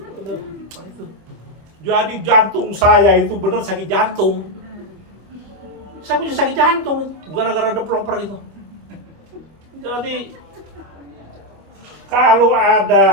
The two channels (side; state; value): left; late; 25 ms